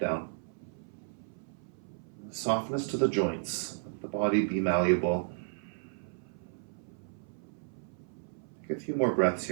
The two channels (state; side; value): silent; left; 55 dB below the other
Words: Softness to the joints. Let the body be malleable. Take a few more breaths